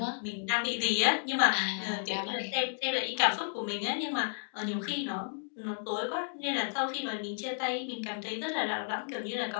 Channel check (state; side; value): silent; right; digital silence